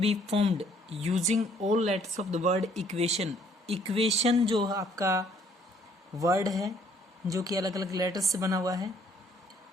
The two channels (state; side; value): normal; both; correlation 0.63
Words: formed using all letters of the word equation. Equation जो आपका वर्ड है जो कि अलग अलग लेटर्स से बना हुआ है